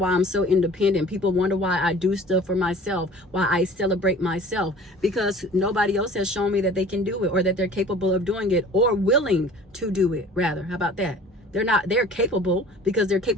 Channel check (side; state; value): both; normal; correlation 0.46